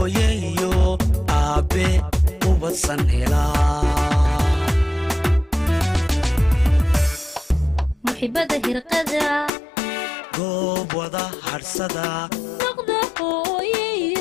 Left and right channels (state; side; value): drops out; right; at 9.5 s